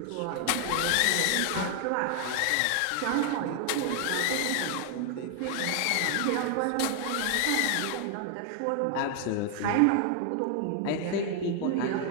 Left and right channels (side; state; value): both; different; correlation 0.00